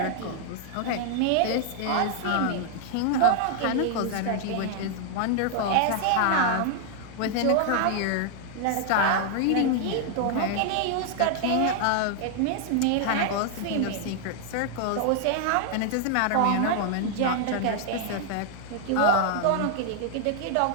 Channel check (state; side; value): different; both; correlation 0.00